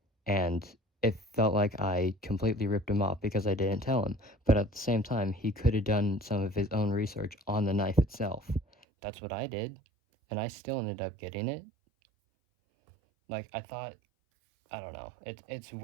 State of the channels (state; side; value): drops out; left; at 8.7 s